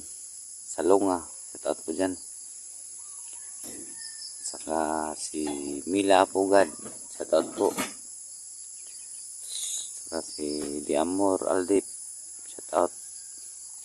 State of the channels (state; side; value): identical; both; correlation 1.00